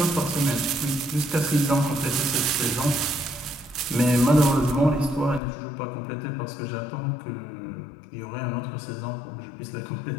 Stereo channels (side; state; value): right; drops out; at 5.4 s